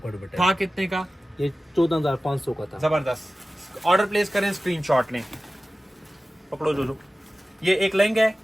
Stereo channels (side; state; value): both; normal; correlation 0.96